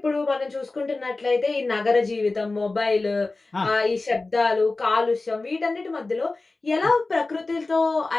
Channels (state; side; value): quieter; right; 3.4 dB